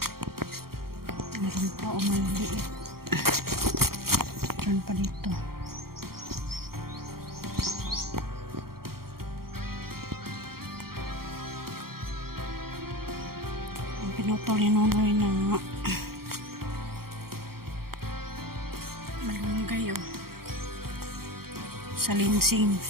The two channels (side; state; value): left; late; 0.94 ms